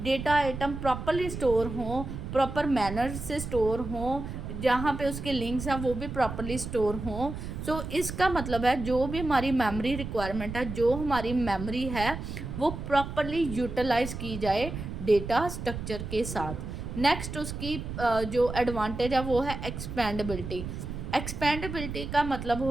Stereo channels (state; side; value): noise; right; rumble, 7 dB below the sound